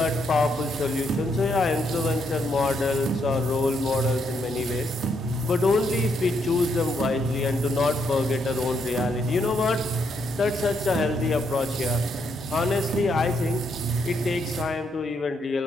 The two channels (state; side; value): normal; both; correlation 0.76